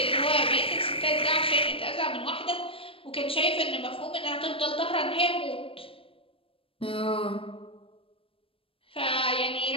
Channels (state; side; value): late; right; 0.27 ms